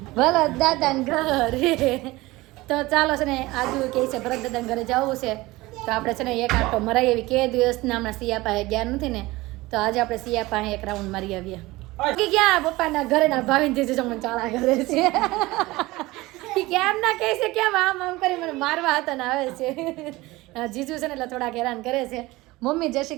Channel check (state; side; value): quieter; left; 20.1 dB